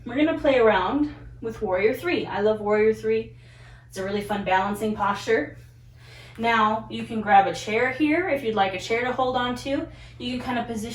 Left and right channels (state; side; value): identical; both; correlation 1.00